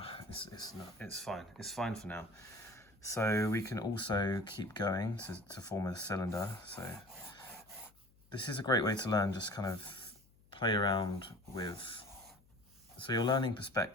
it's fine. It's fine for now. So we can also keep going to form a cylinder. So this is a great way to learn, just kind of play around with. So you're learning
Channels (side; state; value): left; noise; hum, 29 dB below the sound